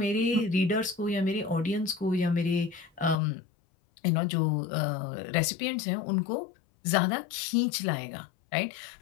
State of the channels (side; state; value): right; drops out; at 3.2 s